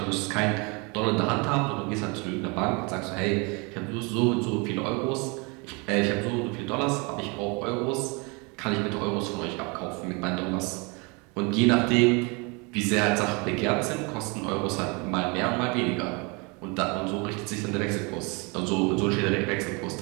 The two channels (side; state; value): left; quieter; 29.8 dB